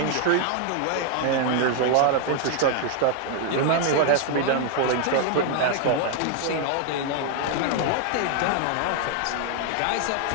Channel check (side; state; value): both; different; correlation 0.00